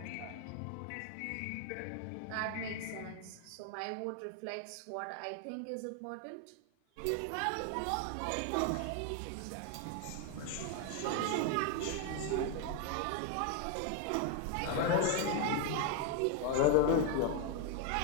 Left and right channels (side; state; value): both; different; correlation 0.01